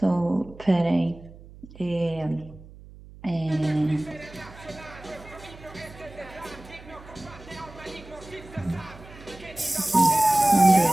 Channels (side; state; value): right; noise; hum, 19 dB below the sound